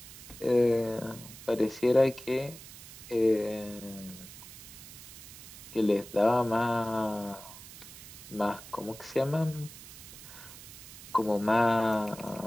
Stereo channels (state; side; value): noise; right; hiss, 15 dB below the sound